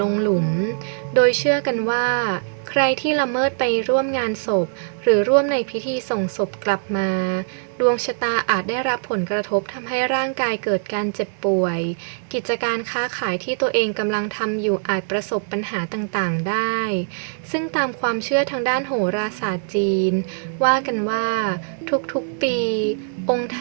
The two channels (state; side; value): silent; left; digital silence